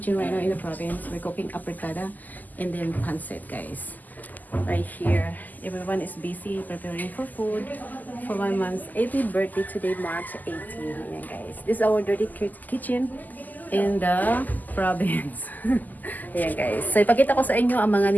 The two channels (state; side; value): late; right; 0.083 ms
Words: right now in the province. We're cooking apretada and then pancit guys. Right here, everyone is busy preparing for food for my mom's 80th birthday today, March 18. Ayan guys, this is our dirty kitchen in the province. Ayan guys, so ipakita ko sa inyo ang mga